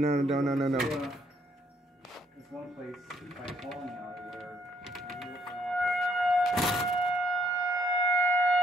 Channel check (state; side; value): normal; both; correlation 0.68